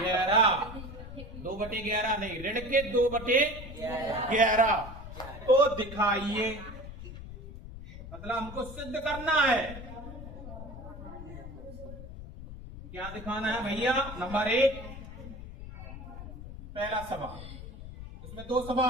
2/11 नहीं, ऋण के 2/11 तो दिखाइए। मतलब हमको सिद्ध करना है। क्या दिखाना है भैया, नंबर 1 पहला सवाल, इसमें 2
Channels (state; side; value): noise; left; rumble, 12 dB below the sound